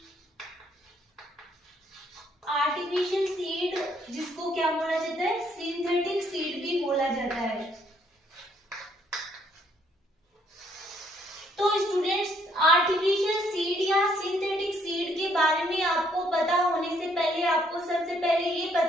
आर्टिफिशियल सीड जिसको क्या बोला जाता है, सिंथेटिक सीड भी बोला जाता है। तो स्टूडेंट्स, आर्टिफिशियल सीड या सिंथेटिक सीड के बारे में आपको पता होने से पहले आपको सबसे पहले ये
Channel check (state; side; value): normal; both; correlation 0.67